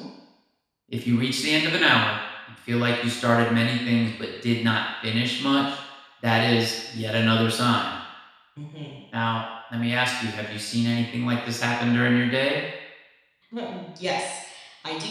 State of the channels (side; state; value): both; identical; correlation 1.00